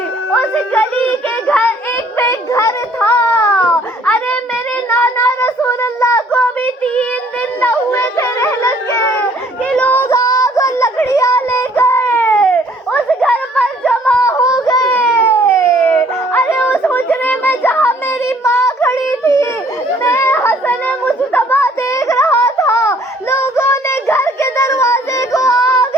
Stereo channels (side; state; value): both; normal; correlation 0.59